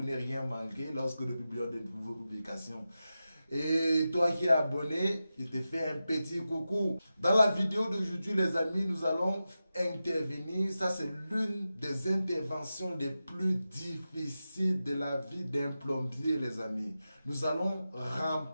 ne rien manquer lorsque nous publions de nouvelles publications. Et toi qui es abonné, je te fais un petit coucou. Dans la vidéo d'aujourd'hui, les amis, nous allons intervenir. Ça, c'est l'une des interventions les plus difficiles de la vie d'un plombier, les amis. Nous allons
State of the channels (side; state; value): both; inverted; correlation -0.92